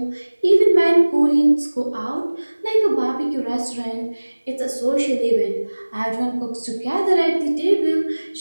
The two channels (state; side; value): inverted; both; correlation -1.00